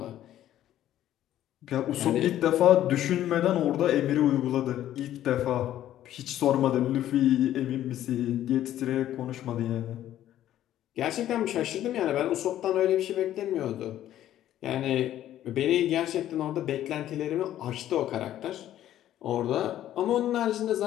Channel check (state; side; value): quieter; right; 12.4 dB